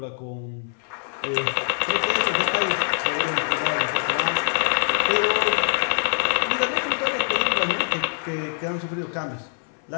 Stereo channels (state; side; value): silent; right; 59 dB below the other